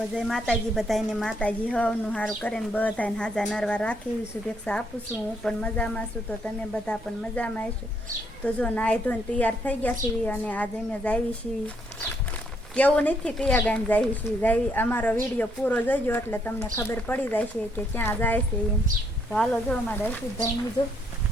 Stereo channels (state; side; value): normal; both; correlation 0.72